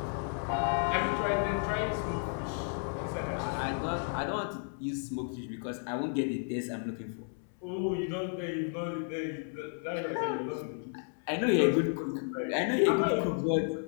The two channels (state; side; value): silent; right; 56 dB below the other